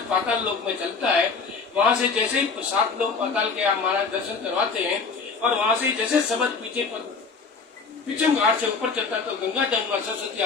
पाताल लोक में चलता है, वहां से जैसे ही 7 लोग पाताल के आप महाराज दर्शन करवाते हैं, और वहां से जैसे शब्द पीछे पर पिछम घाट से ऊपर चलता है, तो गंगा जमुना सरस्वती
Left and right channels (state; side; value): quieter; right; 4.8 dB